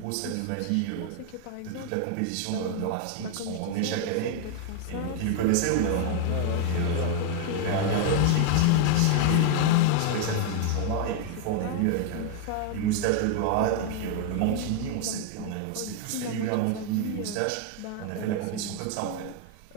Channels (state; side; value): different; both; correlation 0.00